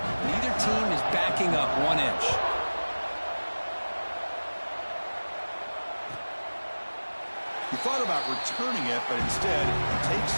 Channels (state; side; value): inverted; both; correlation -1.00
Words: team is backing up 1 inch. He thought about returning it, but instead